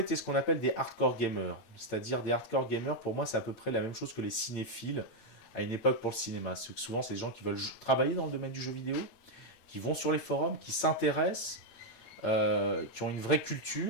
étaient ce qu'on appelle des hardcore gamers. C'est-à-dire des hardcore gamers, pour moi, c'est à peu près la même chose que les cinéphiles à une époque pour le cinéma. Souvent, c'est des gens qui veulent travailler dans le domaine du jeu vidéo, qui vont sur les forums, qui s'intéressent, qui ont une vraie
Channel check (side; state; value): right; late; 8.9 ms